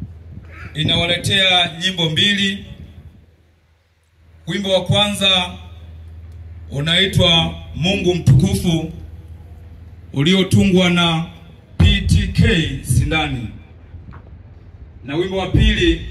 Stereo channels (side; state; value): both; identical; correlation 1.00